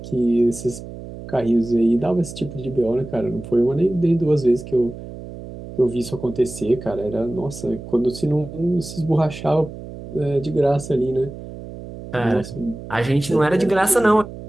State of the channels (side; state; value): right; noise; hum, 12 dB below the sound